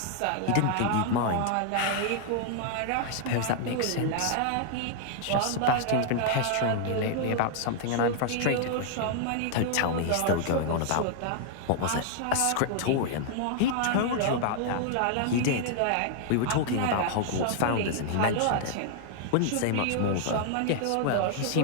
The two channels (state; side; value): different; both; correlation -0.01